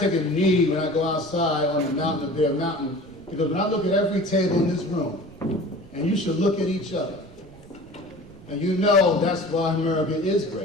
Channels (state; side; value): noise; right; rumble, 24 dB below the sound